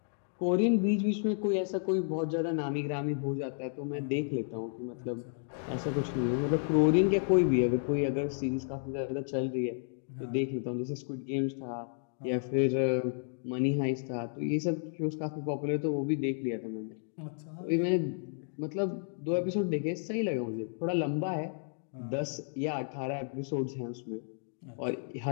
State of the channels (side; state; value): right; silent; digital silence